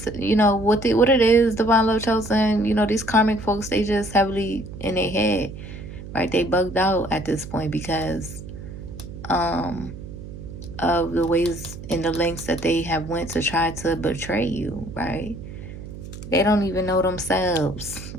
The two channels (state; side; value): noise; right; hum, 12 dB below the sound